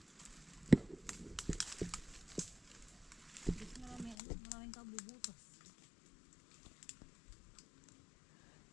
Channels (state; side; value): drops out; right; at 4.2 s